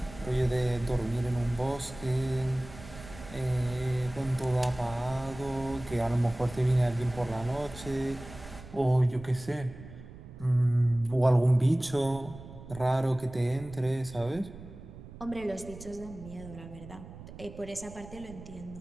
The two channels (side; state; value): right; noise; rumble, 15 dB below the sound